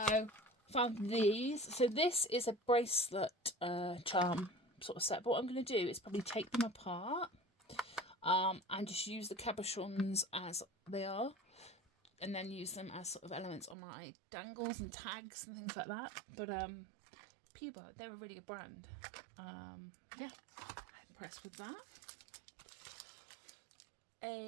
found these. So this is a bracelet charm sort of set. But what I'm going to do is probably take them apart and just use the cabochons as they are. And then use them as sort of elements on my dangles and tags and things like that. But Puba, they're a really good brand. Yeah, I'm impressed with that.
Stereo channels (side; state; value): left; drops out; at 13.8 s